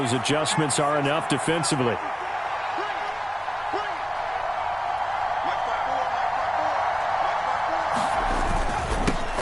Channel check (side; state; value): both; identical; correlation 1.00